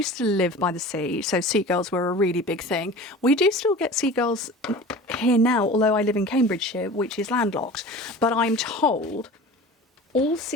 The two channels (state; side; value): normal; both; correlation 0.38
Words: to live by the sea, so seagulls were a really big thing. We do still get seagulls here now, although I live in Cambridgeshire, which is landlocked. But I'm told all